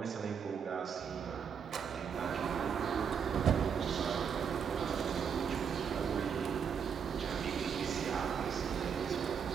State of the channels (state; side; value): quieter; left; 7.1 dB